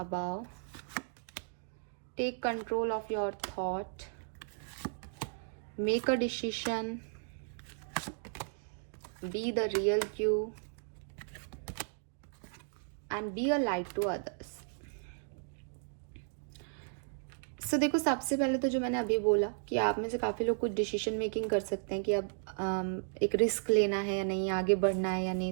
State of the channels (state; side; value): silent; left; digital silence